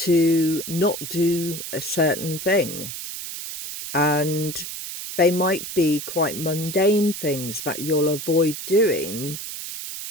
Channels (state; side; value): noise; right; hiss, 8 dB below the sound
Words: not do a certain thing? And they might be quite mundane things that you'll avoid doing,